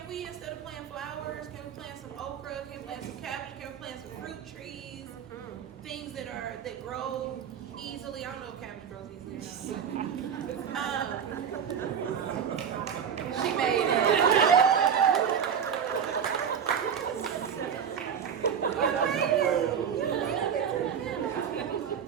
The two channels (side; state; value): left; quieter; 7.7 dB